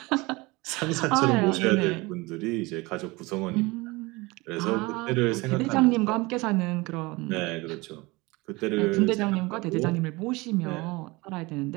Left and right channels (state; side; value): quieter; left; 23.5 dB